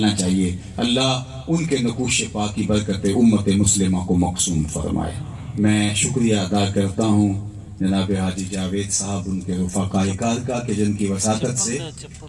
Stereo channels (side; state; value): both; identical; correlation 1.00